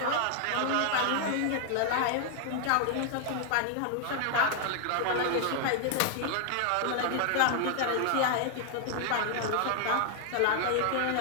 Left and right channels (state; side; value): different; both; correlation 0.00